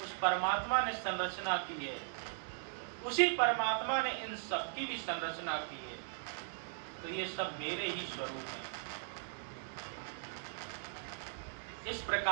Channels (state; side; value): silent; left; digital silence